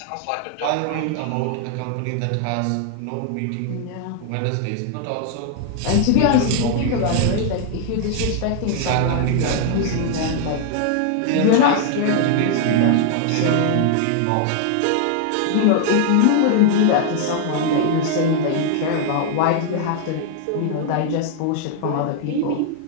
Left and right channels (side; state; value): both; different; correlation 0.00